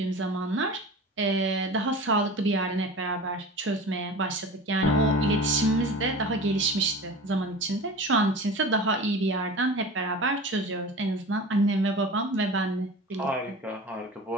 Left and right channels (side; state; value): both; normal; correlation 0.35